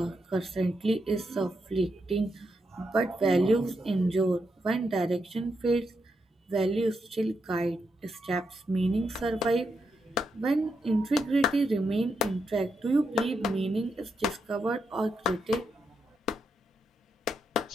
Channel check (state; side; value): normal; both; correlation 0.83